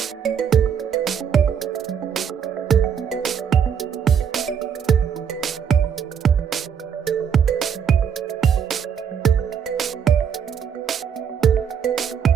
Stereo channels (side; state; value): left; quieter; 7.6 dB